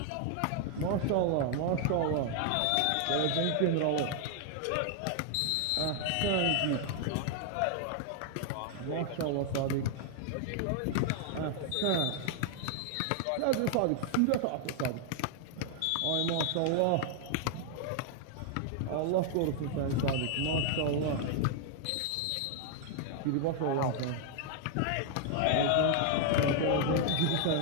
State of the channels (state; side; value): different; both; correlation 0.00